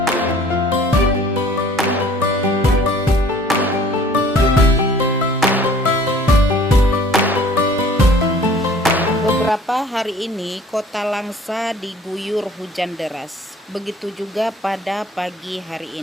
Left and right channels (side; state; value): both; normal; correlation 0.51